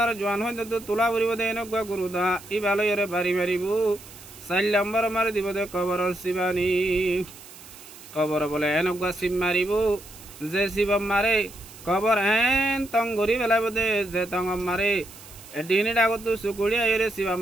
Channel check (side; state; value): right; noise; hiss, 18 dB below the sound